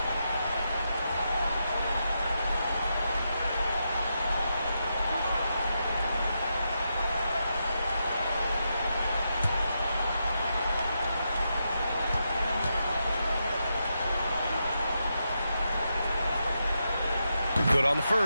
Good on the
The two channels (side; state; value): both; inverted; correlation -0.84